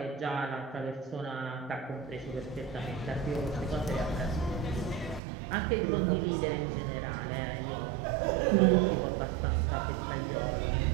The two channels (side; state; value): left; drops out; at 5.2 s